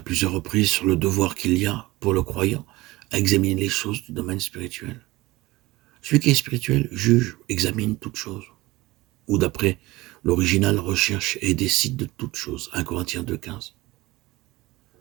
plusieurs reprises sur le devoir qu'il y a pour le croyant à examiner les choses du domaine spirituel. Celui qui est spirituel juge, examine toutes choses, ou d'après l'original recherche et décide de toutes choses. 1 Corinthiens 2,15.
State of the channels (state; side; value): quieter; left; 19.9 dB